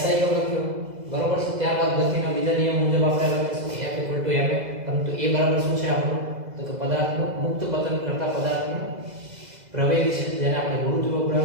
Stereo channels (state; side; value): late; left; 2.0 ms